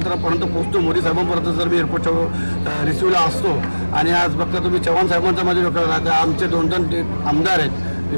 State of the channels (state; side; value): inverted; both; correlation -1.00